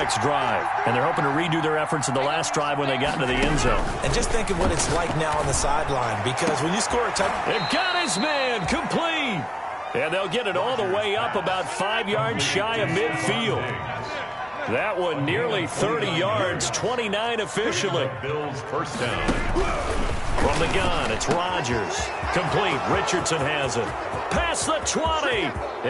drive. And they're hoping to redo their efforts in the last drive when they got into the end zone. And just think of what it's like now on the sideline, because when you score a touchdown... They've got his man complete. And they'll get it all the way up about 5 yards shy of midfield. That one nearly 30 yards, 29 officially. Bills first down. From the gun, it's Rodgers. Complete. Richardson has it. Past the 20.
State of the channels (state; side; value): identical; both; correlation 1.00